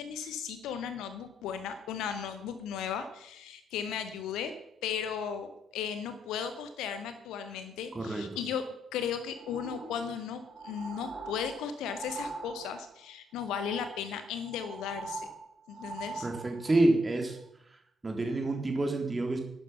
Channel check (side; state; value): both; normal; correlation 0.72